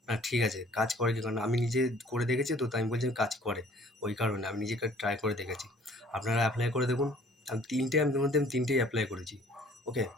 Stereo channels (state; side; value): normal; both; correlation 0.55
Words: না ঠিক আছে, কাজ করে কি, কারণ আমি নিজে করে দেখেছি, তো তাই আমি বলছি কাজ করে। ওই কারণে আমি নিজেকে ট্রাই করে দেখেছি। আপনারা অ্যাপ্লাই করে দেখুন। আমি 3টেই অ্যাপ্লাই করেছি। ওকে,